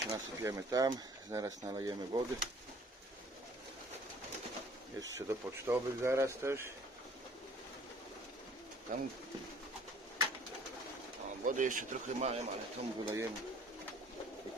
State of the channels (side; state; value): both; normal; correlation 0.54